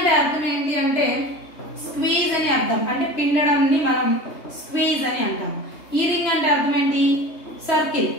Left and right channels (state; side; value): late; right; 3.2 ms